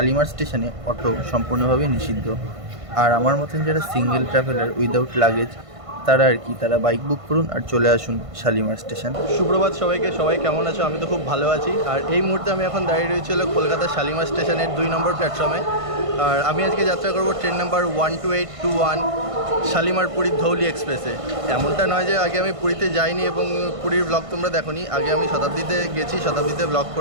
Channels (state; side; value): late; left; 1.5 ms